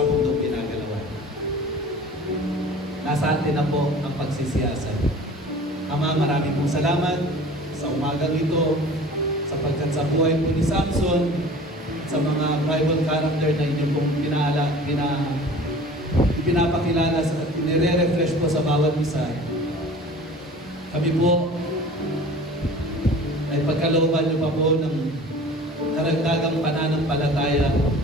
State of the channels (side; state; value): both; normal; correlation 0.43